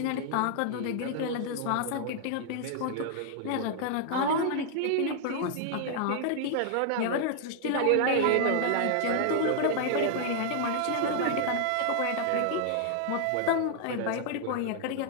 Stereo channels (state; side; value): different; both; correlation 0.00